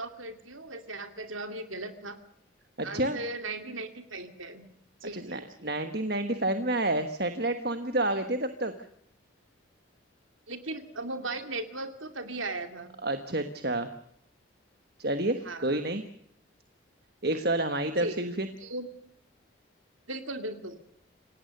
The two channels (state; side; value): normal; both; correlation -0.12